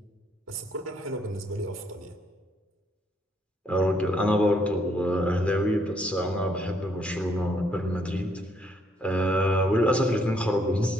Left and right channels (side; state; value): both; normal; correlation 0.70